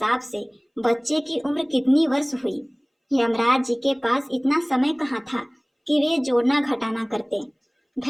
से बच्चे की उम्र कितनी वर्ष हुई? यमराज जी के पास इतना समय कहाँ था कि वे जोड़ना घटाना करते।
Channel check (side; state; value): both; identical; correlation 1.00